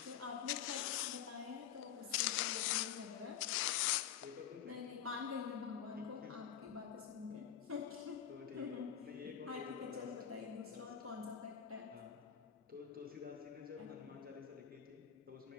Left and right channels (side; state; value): right; quieter; 9.4 dB